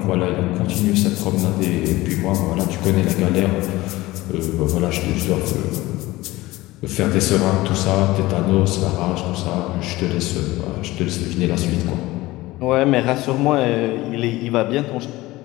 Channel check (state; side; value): quieter; right; 18.9 dB